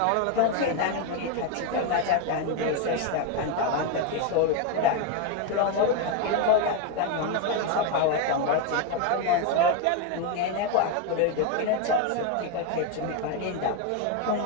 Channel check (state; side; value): different; both; correlation 0.01